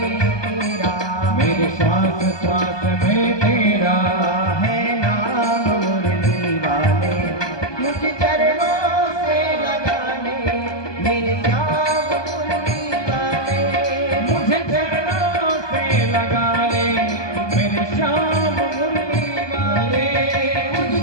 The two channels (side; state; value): right; late; 1.2 ms